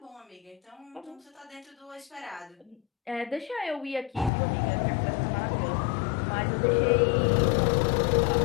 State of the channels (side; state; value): right; drops out; at 4.3 s